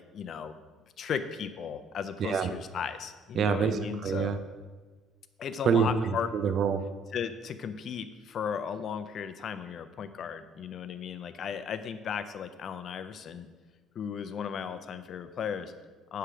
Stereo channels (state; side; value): normal; both; correlation 0.61